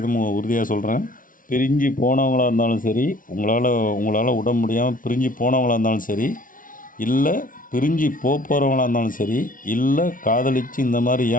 உறுதியாக சொல்கிறேன். பிரிஞ்சு போனவங்களாக இருந்தாலும் சரி, உங்களால் விட முடியாமல் பிரிஞ்சு போனவங்களாக இருந்தாலும் சரி, இல்லை பிரிஞ்சு போகிறவங்களாக இருந்தாலும் சரி, இல்லை காதலித்து இந்த மாதிரி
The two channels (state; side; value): late; right; 0.39 ms